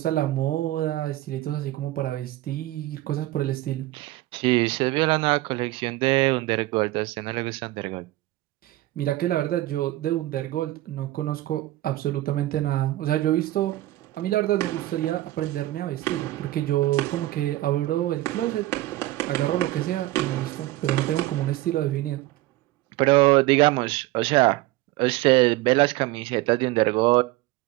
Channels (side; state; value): left; quieter; 17.0 dB